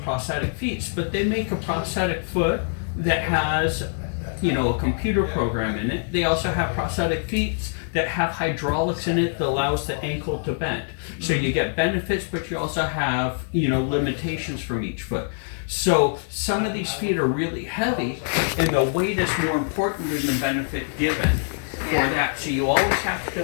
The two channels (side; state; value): right; silent; digital silence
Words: prosthetic feet, but they make a prosthetic foot that has, a computer program in it. They also have prosthetic feet that have hydraulics in it that allows the ankle to bend. So you get benefits, but you also have, limitations from each foot. So some of these feet are really heavy, and the weight is more important than the benefit given for Yeah. that. So you always have